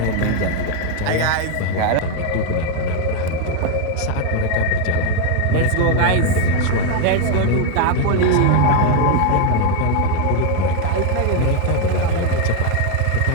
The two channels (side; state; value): both; different; correlation 0.01